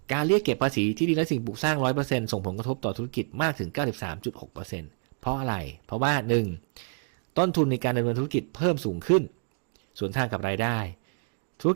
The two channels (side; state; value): left; quieter; 37.3 dB